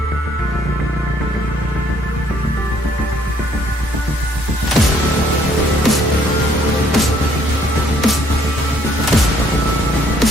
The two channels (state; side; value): normal; both; correlation 0.64